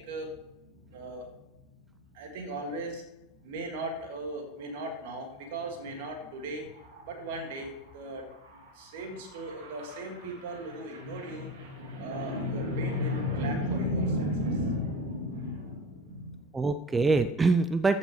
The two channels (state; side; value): normal; both; correlation 0.36